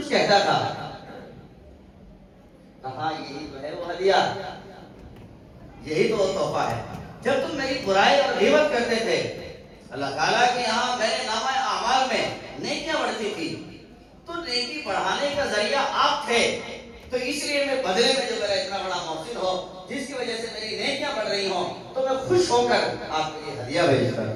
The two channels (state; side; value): identical; both; correlation 1.00